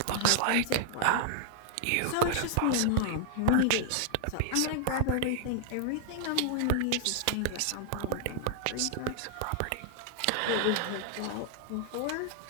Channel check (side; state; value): both; different; correlation -0.01